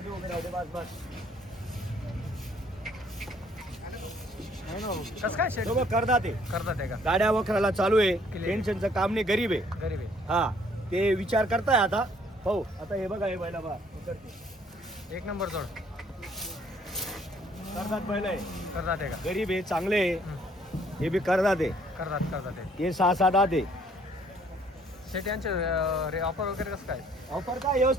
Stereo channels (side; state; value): both; normal; correlation 0.62